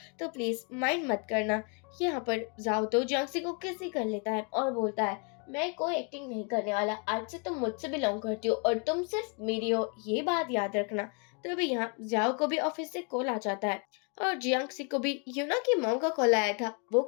तो प्लीज माइंड मत करना। यहाँ पर जाओ तो जियांग को किस ही कर लेता है और बोलता है मैं कोई एक्टिंग नहीं करने वाला, आज से तुम मुझसे बिलोंग करती हो और तुम सिर्फ मेरी हो, ये बात याद रखना। तभी यहाँ जियाओ को भी ऑफिस से कॉल आ जाता है और जियांग को भी यूना की मॉम का कॉल आया था। वो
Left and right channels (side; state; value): right; quieter; 34.5 dB